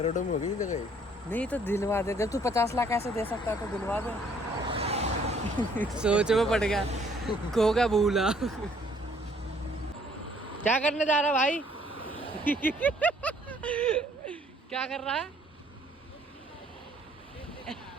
में हो गई जगह। नहीं तो दिलवा दे। जब तू 50 लाख ऐसे दे सकता है तो दिलवा दे। सोच में पड़ गया, खो गया भूला। क्या करने जा रहा भाई? क्या कर रहा है?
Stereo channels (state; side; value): normal; both; correlation 0.62